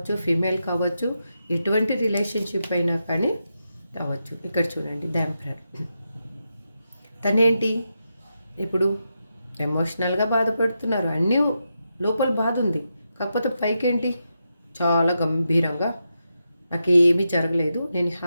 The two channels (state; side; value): inverted; both; correlation -0.86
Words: ఫీమేల్ కావచ్చు, ఎటువంటి రిలేషన్షిప్ అయినా కానీ కావచ్చు. ఇక్కడ చూడండి, ద ఎంపరర్. తనేంటి ఇప్పుడు ఎమోషనల్గా బాధపడుతున్నారు, అన్నీ లోపల బాధ ఉంది. కాకపోతే పైకేంటి చాలా గంభీరంగా నాకు ఏమీ జరగలేదు, నేను